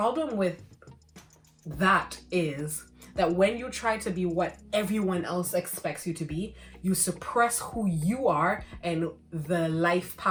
with that is that when you try to be what everyone else expects you to be, you suppress who you are and the life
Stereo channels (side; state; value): both; identical; correlation 1.00